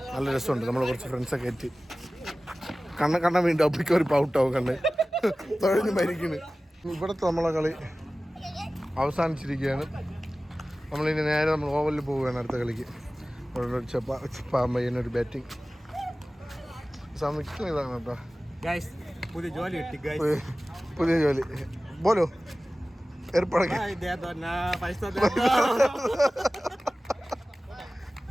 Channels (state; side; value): normal; both; correlation 0.97